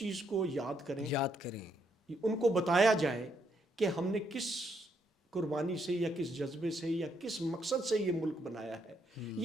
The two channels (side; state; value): both; normal; correlation 0.75